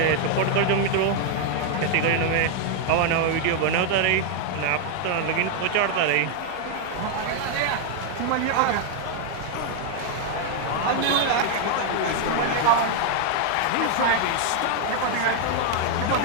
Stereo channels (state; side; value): different; both; correlation 0.00